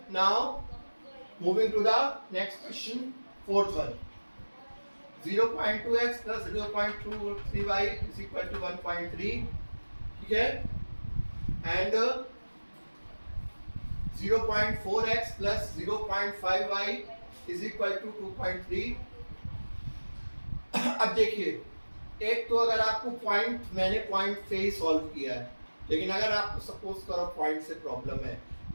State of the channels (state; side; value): inverted; both; correlation -1.00